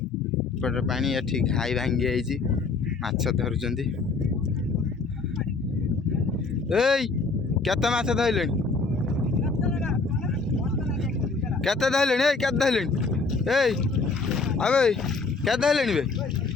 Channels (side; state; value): right; quieter; 4.2 dB